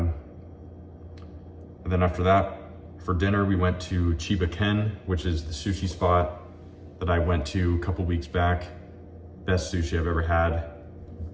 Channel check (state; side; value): identical; both; correlation 1.00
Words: And then after that, for dinner, we went to Chiba Ken, which is the sushi spot that I went to a couple weeks back. Best sushi I've ever had.